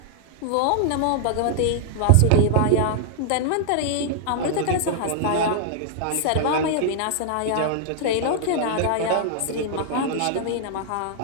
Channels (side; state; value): both; different; correlation -0.01